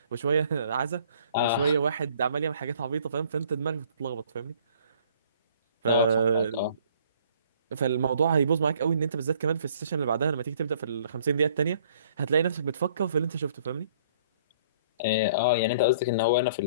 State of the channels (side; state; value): both; inverted; correlation -0.58